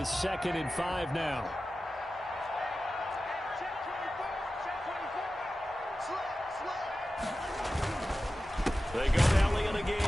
2nd and 5 now. They go to Elliott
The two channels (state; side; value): normal; both; correlation 0.94